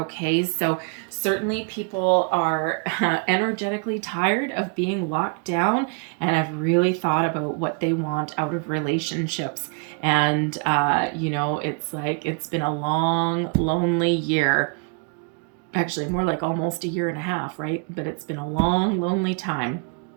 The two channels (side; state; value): left; quieter; 36.8 dB